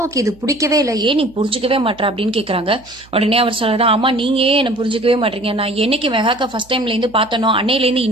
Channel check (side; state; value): right; noise; hum, 26 dB below the sound